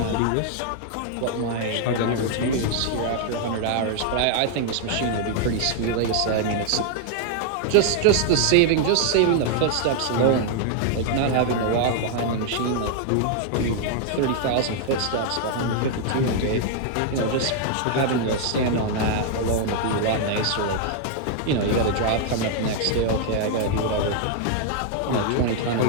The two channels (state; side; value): different; both; correlation 0.00